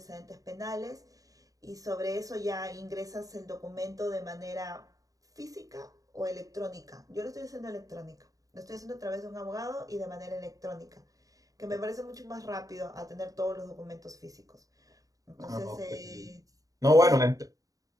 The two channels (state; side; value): late; left; 0.17 ms